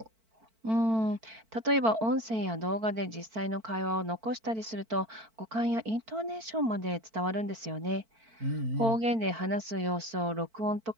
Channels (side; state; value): left; late; 4.5 ms